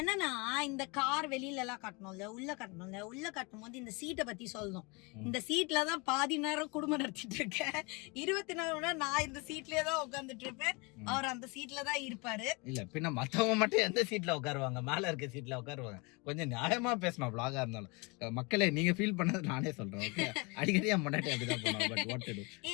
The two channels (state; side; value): quieter; right; 28.6 dB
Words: இந்த கார் வெளியில எல்லாம் கட்டணும்ல, உள்ள கட்டும் போது இந்த சீட்டை பத்தி சொல்லணும். இந்த சீட்ல தான் பாதி நேரம் குடும்பம் நடத்திட்டு இருக்கேன். 24 மணி நேரம் நான் இந்த சீட்லயே தான் உட்காந்துட்டு இருப்பேன். அவர் அந்த சீட்ல தான் இருப்பாரு. இல்ல பின்ன மத்தவங்க மட்டும் எந்த சீட்ல உட்காருவாங்க? மேல இருக்க சீட்ல உட்காருவாங்க. கொஞ்சம் நியாயமா பேசணும் vlog-ஆ இருந்தாலும். மக்களே, நீங்க ஃபீல் பண்ணது நானே சொல்றேன். ஓகே, அடிக்கடி முன்னாடி அப்படிதான் போனோம். பட் வாட் டு டு,